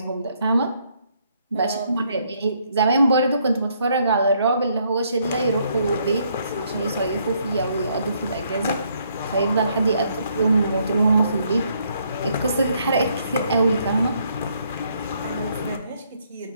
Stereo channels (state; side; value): inverted; both; correlation -0.71